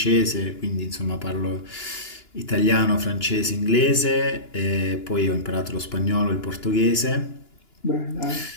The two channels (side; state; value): right; late; 2.9 ms